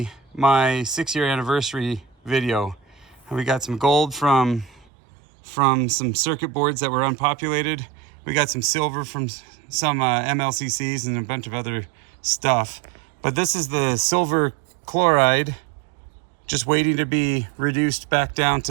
my 6-year anniversary video. We got some gold from some circuit boards that were unpopulated. We got some silver from some MLCCs and a bunch of other stuff. But this is the silver chloride, just waiting to be reduced back down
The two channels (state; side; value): drops out; left; at 4.9 s